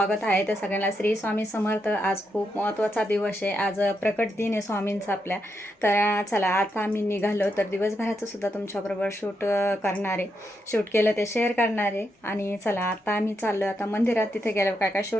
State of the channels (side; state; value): both; normal; correlation 0.82